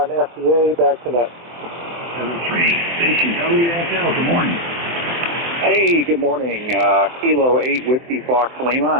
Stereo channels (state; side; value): late; left; 24 ms